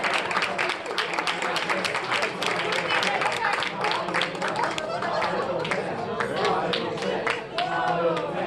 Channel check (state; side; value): identical; both; correlation 1.00